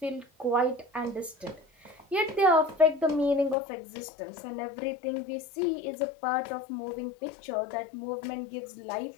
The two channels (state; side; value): drops out; right; at 3.6 s